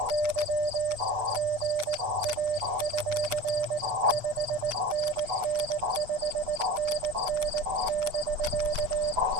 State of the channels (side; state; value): left; late; 8.1 ms